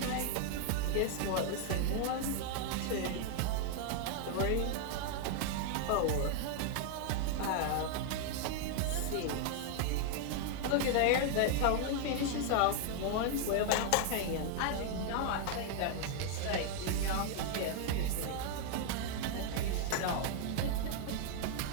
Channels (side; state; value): both; different; correlation 0.00